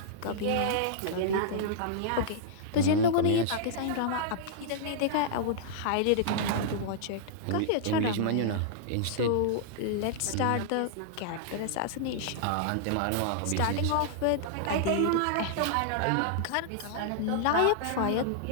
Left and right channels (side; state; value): both; different; correlation -0.02